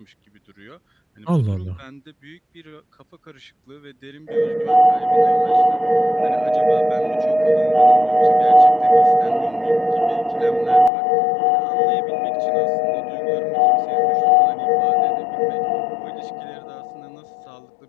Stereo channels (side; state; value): right; drops out; at 10.9 s